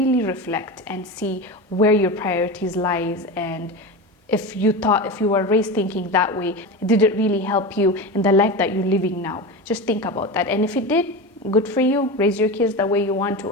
reflect and see where your priorities lies. And if you were raised thinking that way, did it really help you in the life that you're living now? Just think about that. And if it did, good for you. Raise your kids the way you want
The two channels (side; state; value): both; normal; correlation 0.24